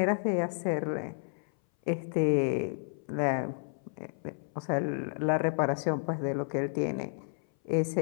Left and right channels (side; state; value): right; silent; 57 dB below the other